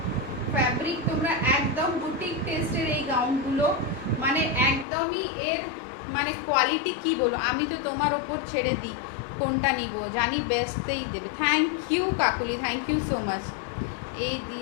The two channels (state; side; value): drops out; right; at 4.9 s